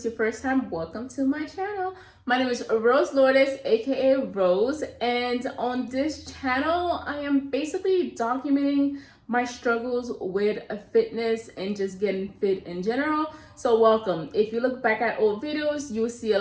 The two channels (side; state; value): both; identical; correlation 1.00